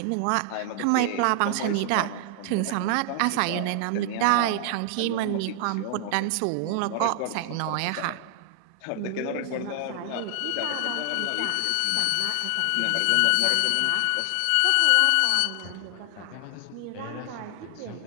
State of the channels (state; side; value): different; both; correlation 0.00